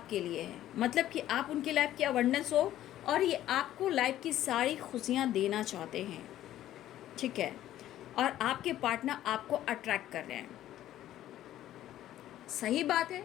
लिए है, मतलब कि आप उनकी लाइफ की अवेयरनेस हो, और ये आपको लाइफ की सारी खुशियाँ देना चाहते हैं, ठीक है। और आपके पार्टनर आपको अट्रैक्ट कर रहे हैं, सही बात है।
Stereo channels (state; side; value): quieter; right; 13.0 dB